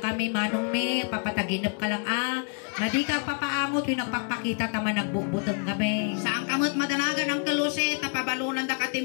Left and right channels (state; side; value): quieter; right; 39.2 dB